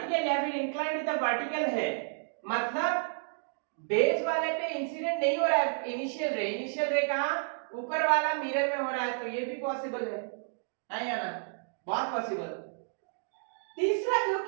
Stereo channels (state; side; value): silent; left; digital silence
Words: या फिर इंक्लाइंड विद द वर्टिकल है, मतलब बेस वाले पे इंसिडेंट नहीं हो रहा है इनिशियल रे कहां, ऊपर वाला मिरर में हो रहा है, तो ये भी पॉसिबल है या ना, बहुत पॉसिबल। तीसरा जो